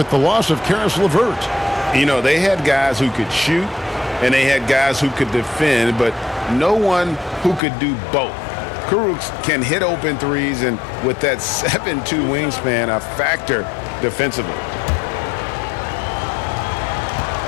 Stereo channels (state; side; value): drops out; right; at 7.6 s